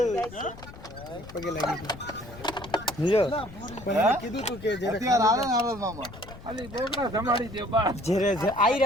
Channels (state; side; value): noise; left; rumble, 16 dB below the sound